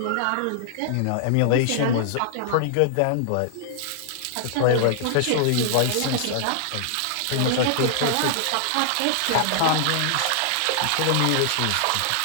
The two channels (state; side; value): different; both; correlation -0.01